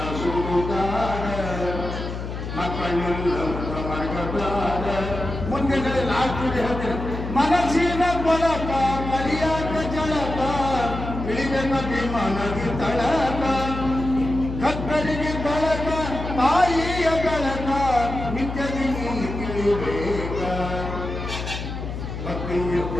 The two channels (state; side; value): noise; left; hum, 6 dB below the sound